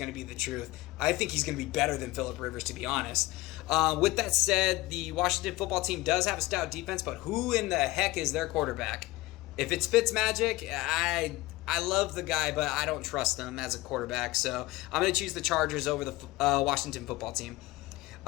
to be the truth. I think he's going to be better than Phillip Rivers, to be honest. With that said, the Washington football team does have a stout defense, but who in the heck is their quarterback? If it's Fitzmagic, I love the guy, but I don't trust him as a quarterback, so I'm going to choose the Chargers over the Washington football team.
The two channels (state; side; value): quieter; right; 19.5 dB